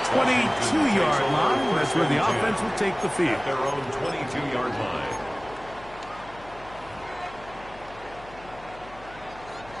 22-yard line. That's where the offense will take the field. At their own 22-yard line.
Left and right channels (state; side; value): noise; left; hum, 20 dB below the sound